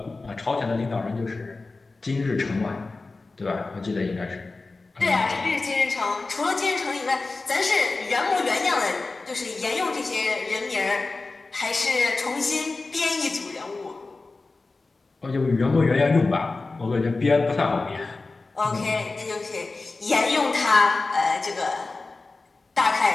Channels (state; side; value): quieter; right; 3.6 dB